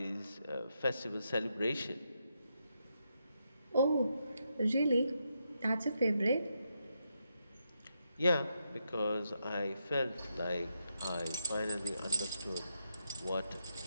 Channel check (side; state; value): both; inverted; correlation -0.82